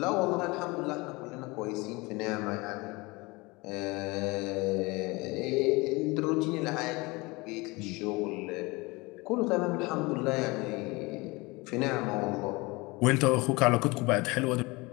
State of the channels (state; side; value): quieter; right; 24.4 dB